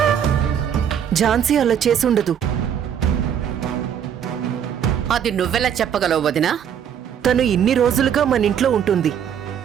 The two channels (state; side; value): quieter; left; 8.7 dB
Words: ఝాన్సీ అలా చేసుండదు. అది నువ్వెలా చెప్పగలవు వదినా? తను ఇన్ని రోజులుగా మన ఇంట్లో ఉంటుంది.